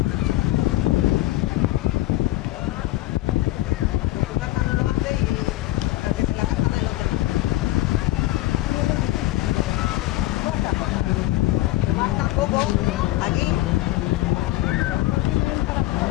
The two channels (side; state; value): right; quieter; 16.7 dB